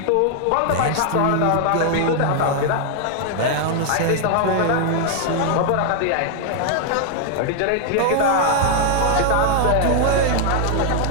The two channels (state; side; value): different; both; correlation 0.00